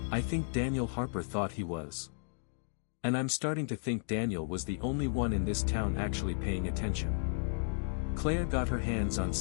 "I think Daniel Harper thought he was. And I'm starting to think Daniel was the only one in this town actually paying attention." Claire got her hands on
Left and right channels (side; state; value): right; silent; digital silence